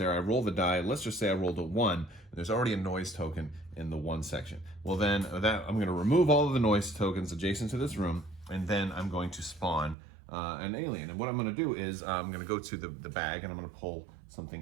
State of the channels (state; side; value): drops out; left; at 10.0 s